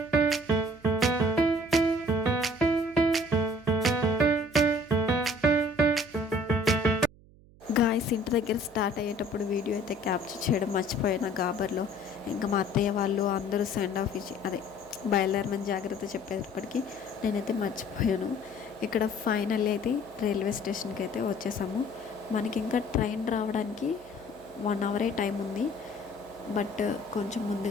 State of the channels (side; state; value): right; noise; hum, 25 dB below the sound